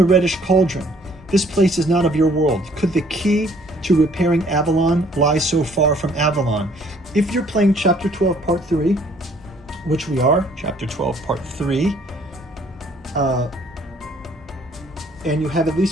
reddish cauldron. This place is not of your world. Could the key to repairing Avalon lie so far from Avalon? If you're playing Chapter 12, Part 3, which we are, Chapter 12, Part 3, and you have at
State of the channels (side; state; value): both; normal; correlation 0.61